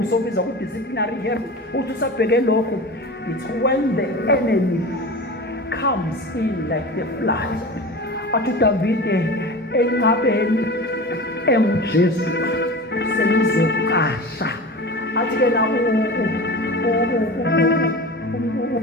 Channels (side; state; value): both; normal; correlation 0.32